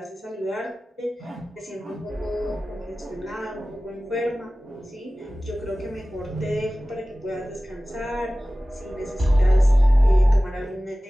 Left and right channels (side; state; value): both; normal; correlation 0.97